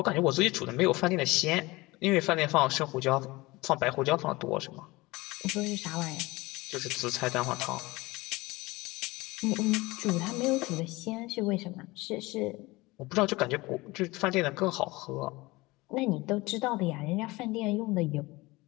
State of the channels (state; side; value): quieter; right; 21.6 dB